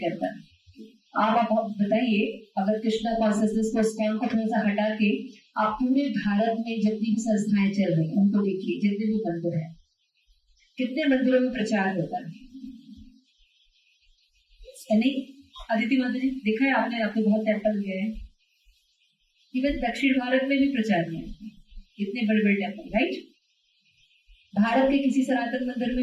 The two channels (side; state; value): both; identical; correlation 1.00